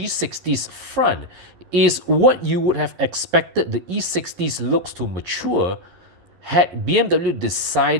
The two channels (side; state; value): left; late; 11 ms